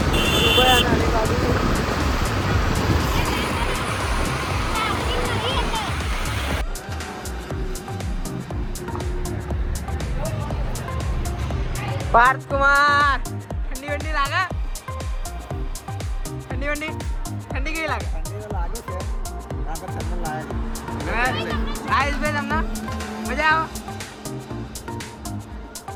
પાર્થ કુમાર ઠંડી વંડી લાગે? ઠંડી વંડી ઠંડી કેવી લાગે? ઠંડી તો લાગે છે. આગળ ઠંડી લાગે. આઈસ ભાઈ તમને મજા આવે?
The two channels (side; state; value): both; identical; correlation 1.00